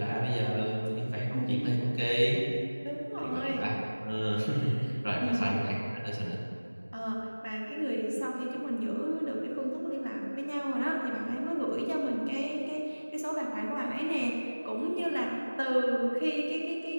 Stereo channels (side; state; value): both; inverted; correlation -1.00